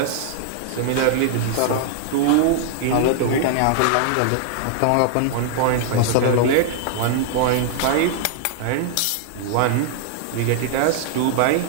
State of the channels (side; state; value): both; different; correlation -0.01